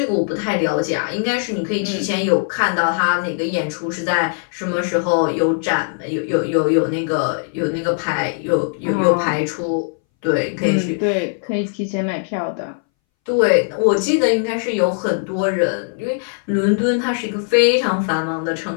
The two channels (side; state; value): right; silent; 63 dB below the other